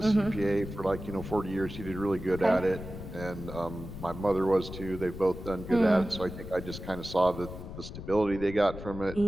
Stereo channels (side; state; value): left; noise; rumble, 10 dB below the sound